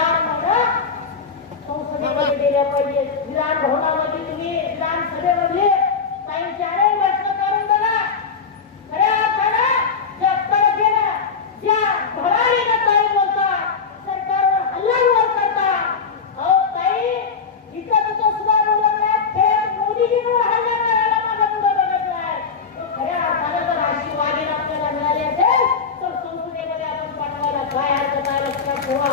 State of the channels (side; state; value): right; quieter; 5.5 dB